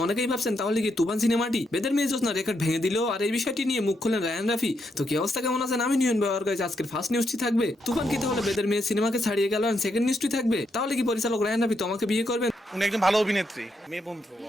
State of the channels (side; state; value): both; normal; correlation 0.80